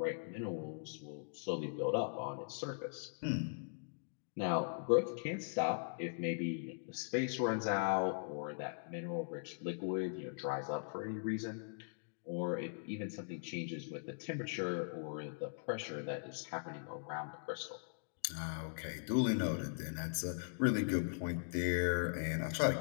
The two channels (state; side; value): silent; right; digital silence